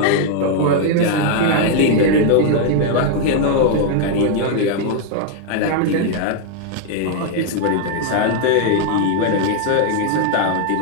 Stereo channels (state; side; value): different; both; correlation 0.00